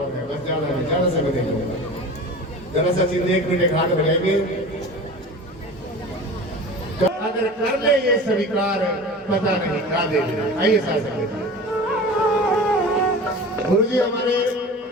है, बस ज्यादा समय नहीं होगा। जरा सा चिंता 1 मिनट हाथ बढ़ाएंगे, तो अगर कर ले ये स्वीकार पता नहीं खा दे। आइए साथ गुरु जी हमारे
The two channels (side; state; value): both; normal; correlation 0.36